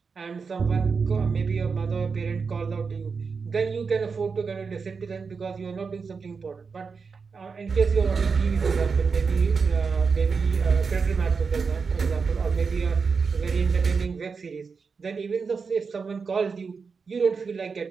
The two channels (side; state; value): left; quieter; 5.2 dB